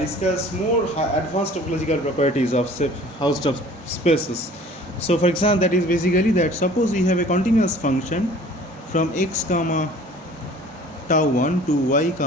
more advanced topological properties of Hausdorff spaces. So for example, that is basically that suppose we have a continuous function from x comma tau 1 to y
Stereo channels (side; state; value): both; normal; correlation 0.48